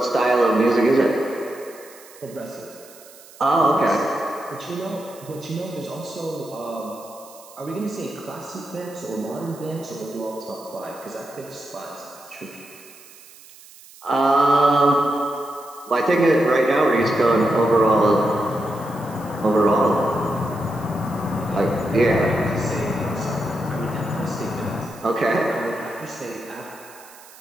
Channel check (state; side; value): noise; right; hiss, 21 dB below the sound